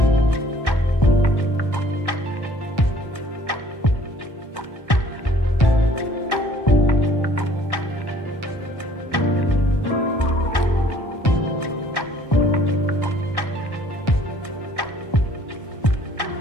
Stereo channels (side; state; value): right; late; 1.1 ms